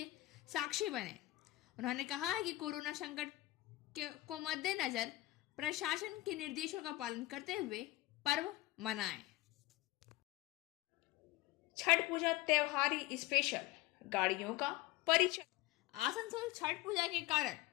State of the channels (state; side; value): quieter; right; 18.0 dB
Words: साक्षी बने। उन्होंने कहा है कि कोरोना संकट को मद्देनजर प्रशासन के निर्देशों का पालन करते हुए पर्व मनाएं। छठ पूजा त्योहारी स्पेशल गाड़ियों का परिचय। आसनसोल छठ पूजा के कारण